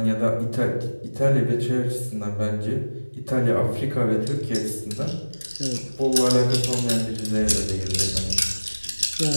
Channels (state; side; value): inverted; both; correlation -1.00